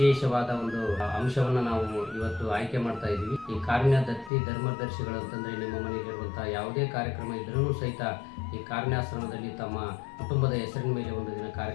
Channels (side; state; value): right; drops out; at 4.3 s